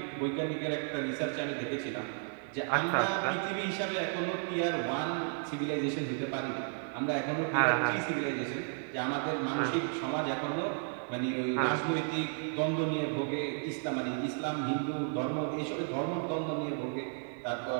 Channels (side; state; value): left; silent; 56 dB below the other